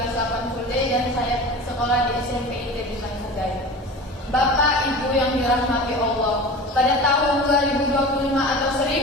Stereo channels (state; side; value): normal; both; correlation 0.35